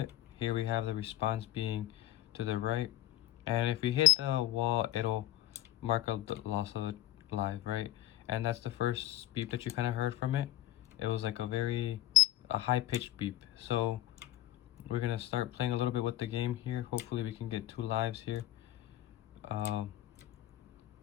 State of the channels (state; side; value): quieter; right; 14.6 dB